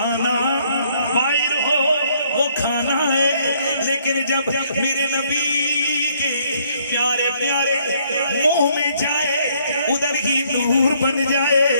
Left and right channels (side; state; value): both; inverted; correlation -0.66